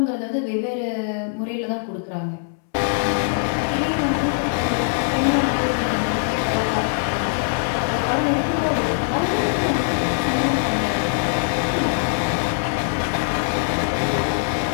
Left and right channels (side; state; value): right; silent; 64 dB below the other